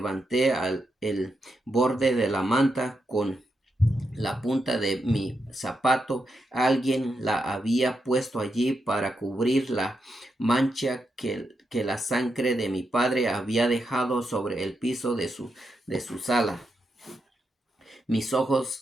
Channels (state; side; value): normal; both; correlation 0.84